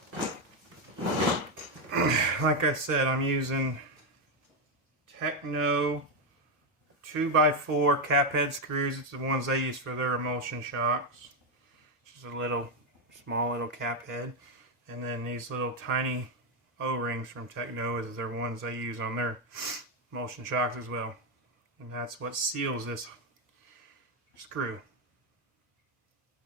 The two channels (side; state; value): both; normal; correlation 0.05